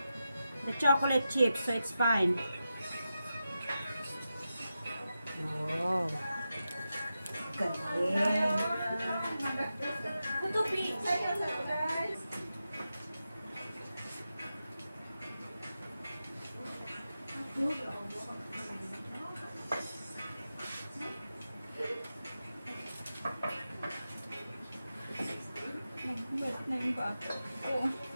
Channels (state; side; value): inverted; both; correlation -0.90